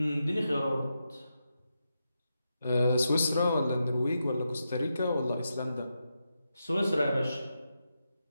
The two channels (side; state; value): both; inverted; correlation -0.86